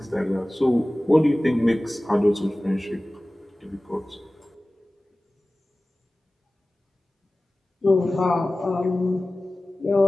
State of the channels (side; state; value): both; normal; correlation 0.97